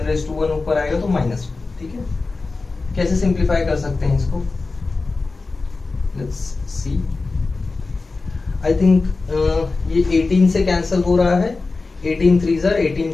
ऊपर आएगा तो -1। ठीक है, कैसे सिंप्लीफाई कर सकते हैं इसको? Let's see. आई थिंक ये 18 से कैंसिल हो रहा है। 18 3s are 18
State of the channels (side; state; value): right; quieter; 3.8 dB